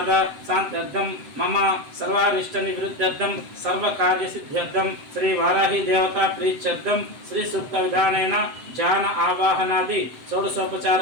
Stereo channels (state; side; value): late; left; 7.8 ms